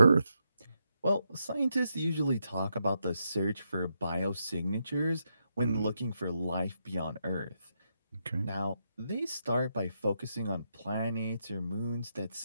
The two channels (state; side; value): inverted; both; correlation -0.82